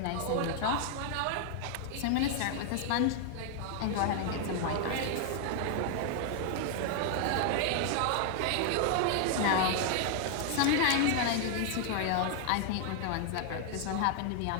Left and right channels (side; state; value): both; different; correlation 0.00